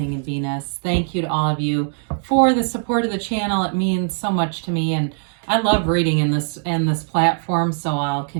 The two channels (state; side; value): silent; left; digital silence